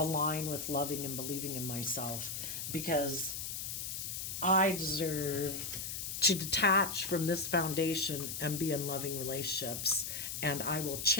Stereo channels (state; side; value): noise; left; hiss, 5 dB below the sound